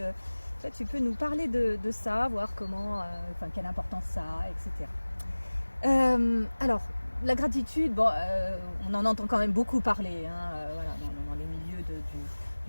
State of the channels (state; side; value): inverted; both; correlation -1.00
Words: peux nous parler de ça, voir comment, quelle importance ça a, etc. Alors la gratitude, on en entend quand même beaucoup parler, voilà, dans les milieux